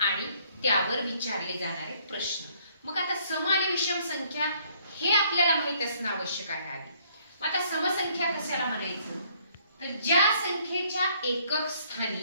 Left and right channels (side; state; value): both; inverted; correlation -0.63